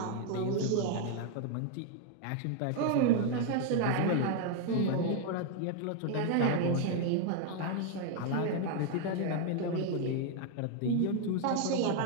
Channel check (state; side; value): different; both; correlation 0.00